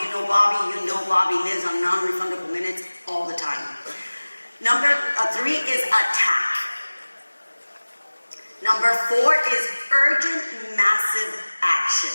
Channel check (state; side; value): inverted; both; correlation -1.00